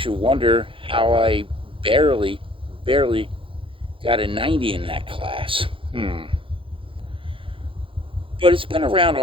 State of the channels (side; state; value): left; late; 0.25 ms